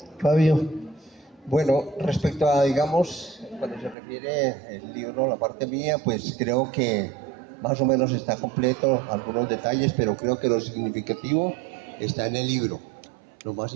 Fabio. Bueno, respecto a, digamos, cuando se refiere el libro, la parte mía, pues creo que más o menos está completo, algunos detalles, pero creo que lo significativo está en el libro. Lo más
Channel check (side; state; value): left; drops out; at 4.0 s